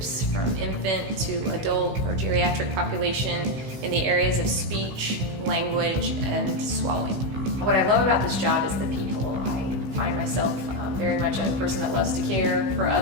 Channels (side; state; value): left; late; 16 ms